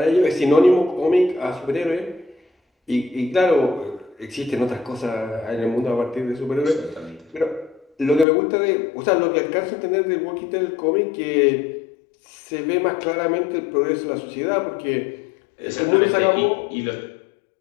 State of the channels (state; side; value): drops out; right; at 8.2 s